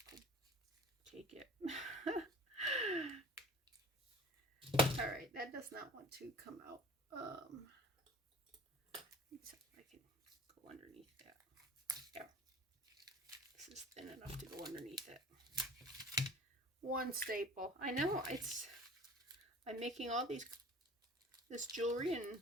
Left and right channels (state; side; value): normal; both; correlation 0.44